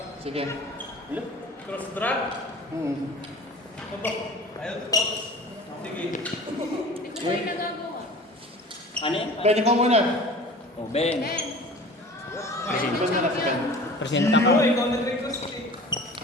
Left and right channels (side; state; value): both; normal; correlation 0.41